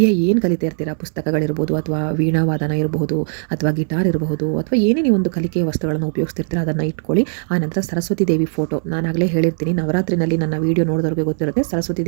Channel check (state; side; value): silent; left; 62 dB below the other